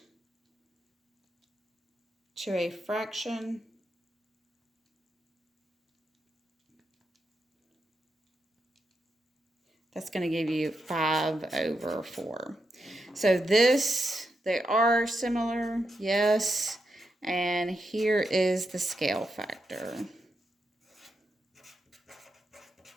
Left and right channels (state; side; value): normal; both; correlation 0.85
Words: to a fraction. That's going to give you 5/4. So this, they are similar, yes. And here is the scale factor.